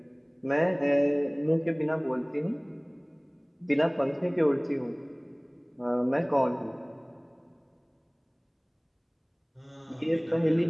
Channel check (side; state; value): both; identical; correlation 1.00